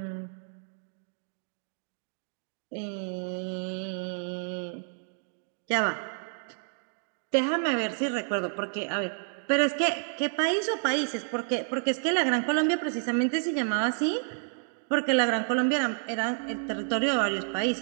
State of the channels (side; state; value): left; silent; 58 dB below the other